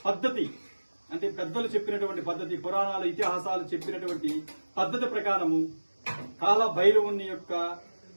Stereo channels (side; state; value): both; inverted; correlation -1.00